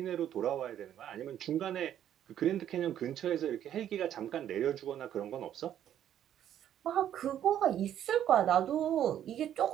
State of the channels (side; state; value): left; quieter; 10.6 dB